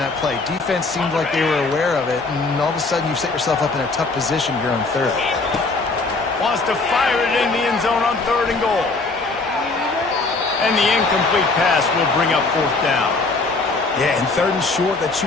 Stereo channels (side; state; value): right; quieter; 3.6 dB